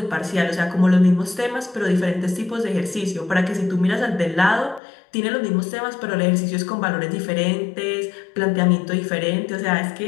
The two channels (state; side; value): drops out; right; at 4.8 s